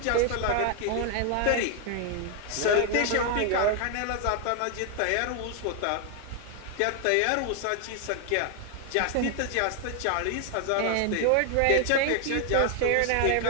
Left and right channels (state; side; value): different; both; correlation 0.00